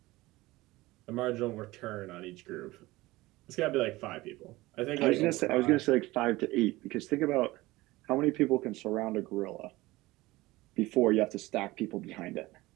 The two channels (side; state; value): left; quieter; 19.5 dB